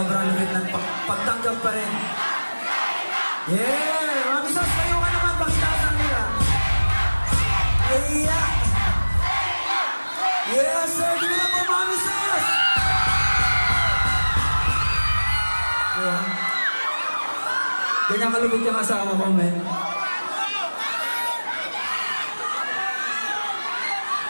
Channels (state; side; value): inverted; both; correlation -1.00